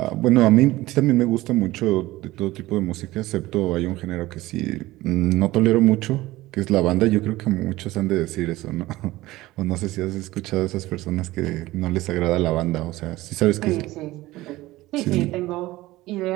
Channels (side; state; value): left; quieter; 18.0 dB